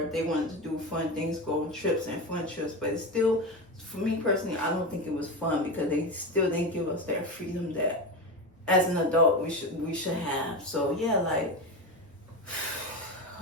if they wanted to do fun things, go on trips and fun trips. But it's still, for me personally, I don't think it was fun because they still didn't give us that freedom that as an adult we should have. So yeah, like,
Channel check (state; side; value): normal; both; correlation 0.21